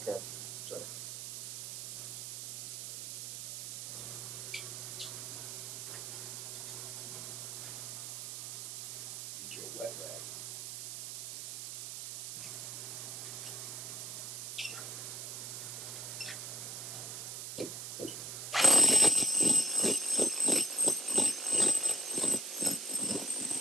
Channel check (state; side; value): noise; right; hiss, 7 dB below the sound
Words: So. Get your wet rag.